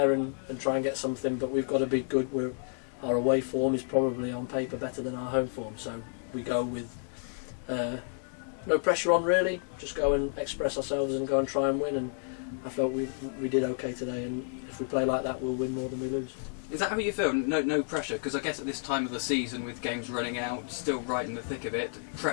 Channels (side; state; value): right; silent; 57 dB below the other